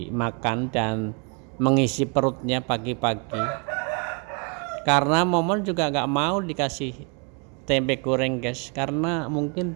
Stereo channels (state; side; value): quieter; left; 33.5 dB